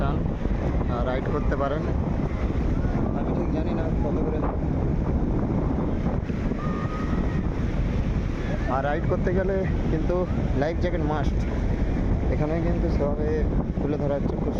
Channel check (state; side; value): identical; both; correlation 1.00